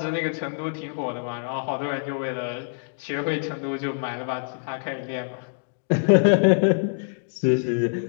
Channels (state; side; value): silent; right; digital silence